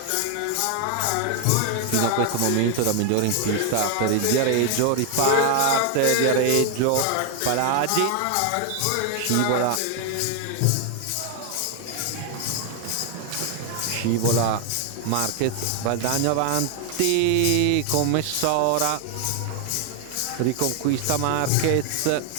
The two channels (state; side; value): different; both; correlation 0.00